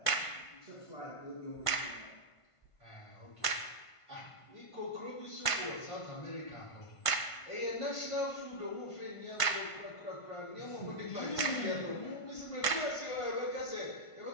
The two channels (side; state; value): right; late; 1.5 ms